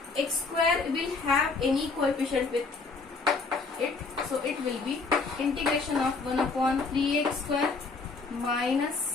x square will have any coefficient with it, so it will be integration of 1 upon 3x square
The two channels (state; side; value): quieter; right; 4.2 dB